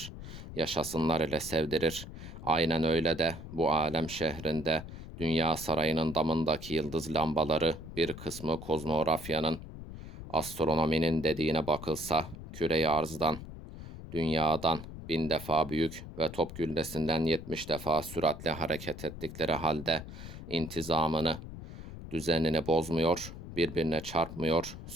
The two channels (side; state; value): left; noise; rumble, 12 dB below the sound